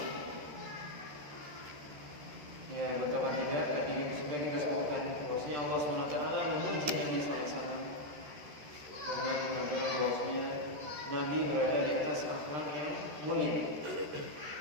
Ya, betapa tidak tadi sudah kita sebutkan bahwasanya Allah SWT memuji Nabi SAW dengan mengatakan bahwasanya Nabi berada di atas akhlak yang mulia.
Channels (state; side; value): late; left; 13 ms